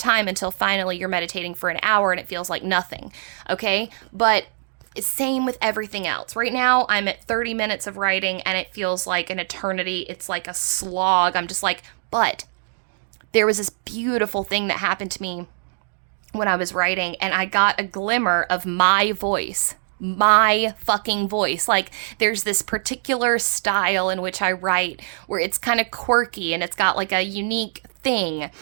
until finally you're meditating for an hour and it feels like nothing, okay? But same with everything else. Right now, I'm at 30 minutes of writing and it feels like an eternity. It's like a slog. I'm just like, but there was this beautiful thing that happened to me when I was writing and I got a glimmer of my voice. My fucking voice. Like there's this particular style in which I write where it's kind of quirky and it's got like a unique thing.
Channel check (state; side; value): silent; left; digital silence